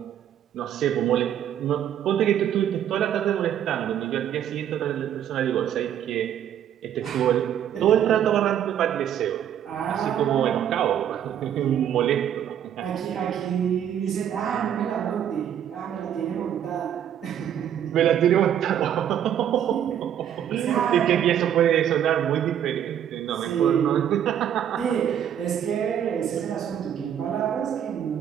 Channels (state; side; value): quieter; left; 9.8 dB